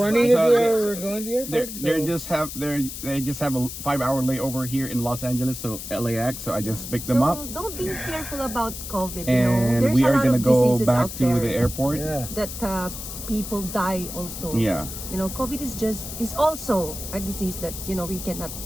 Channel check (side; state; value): left; noise; hiss, 9 dB below the sound